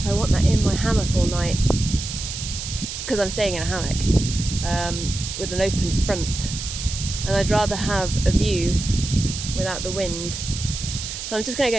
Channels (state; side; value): noise; right; hiss, 7 dB below the sound